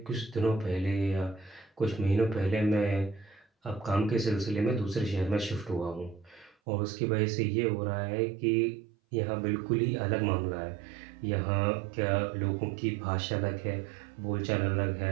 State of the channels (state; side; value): drops out; left; at 6.6 s